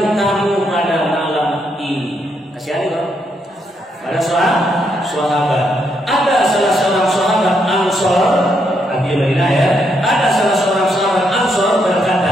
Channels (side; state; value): both; normal; correlation 0.77